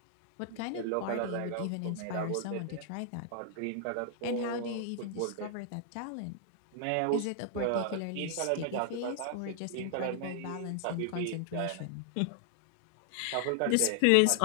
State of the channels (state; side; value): different; both; correlation 0.00